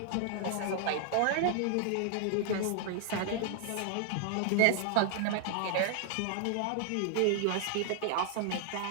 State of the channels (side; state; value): both; different; correlation 0.00